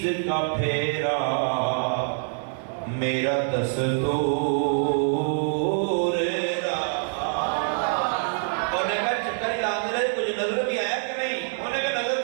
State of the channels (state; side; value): silent; left; 61 dB below the other